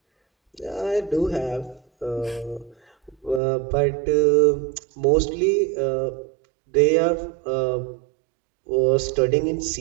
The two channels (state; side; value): drops out; left; at 3.4 s